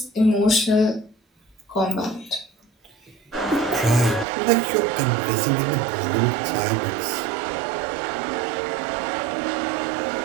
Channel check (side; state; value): left; drops out; at 4.2 s